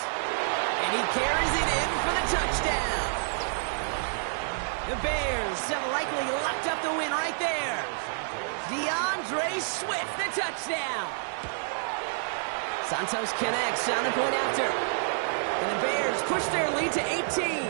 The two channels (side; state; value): left; silent; digital silence